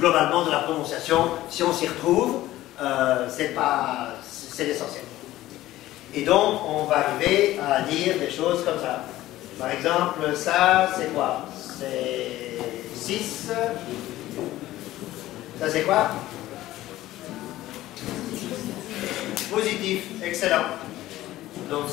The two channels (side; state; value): right; quieter; 15.5 dB